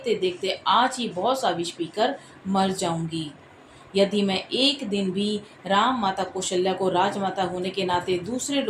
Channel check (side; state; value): both; identical; correlation 1.00